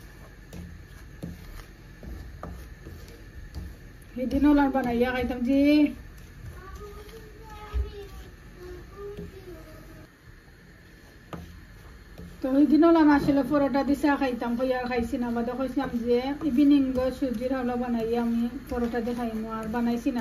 সেদিন ওলার বানাইয়া খাইতাম যে তো ওই দিন ওলাম আসলে পরোটা দিছে খাইতাম, আর খাইছি না। বাদে কইছিলাম যে ইভিনিং সুজির হাওলা বানাইয়া আমি পরোটা দিয়ে খাইমো, আর বানাইছি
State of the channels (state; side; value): identical; both; correlation 1.00